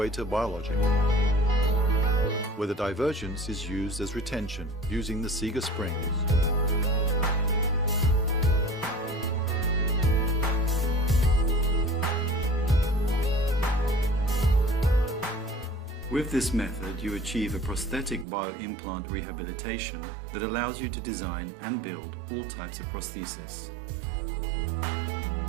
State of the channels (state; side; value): drops out; left; at 18.2 s